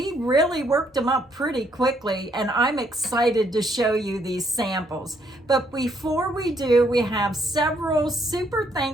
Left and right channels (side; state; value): both; normal; correlation 0.70